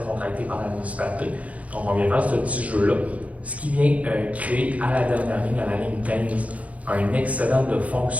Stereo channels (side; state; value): left; late; 0.067 ms